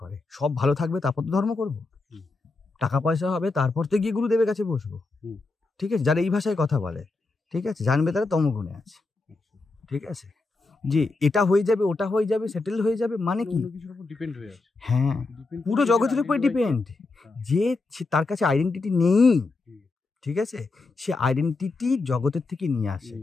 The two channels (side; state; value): right; quieter; 3.6 dB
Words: করে, সব ভালো থাকবে তারপর তো ধর্ম করবো, টাকা পয়সা হবে তারপর তো গিয়ে গুরুদেবের কাছে বসবো, ঠিক আছে? যারা এই ভাষায় কথা বলে, ঠিক আছে, জানবে তারা তমগুণে আছে, ঠিক আছে? যে এটা হয়ে যাবে ওটা হয়ে যাবে সেটেল হয়ে যাবে মানে কি, ডিপেন্ড হয়ে আছে, হ্যাঁ পুরো জগতের উপরে ডিপেন্ড। যে তার কাছে আইডেন্টিটি নেই, ঠিক আছে, সে আইডেন্টিটি জগতের থেকে নিয়ে আসে,